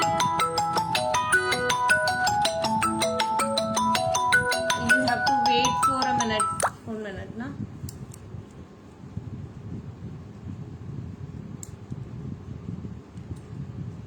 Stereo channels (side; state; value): both; identical; correlation 1.00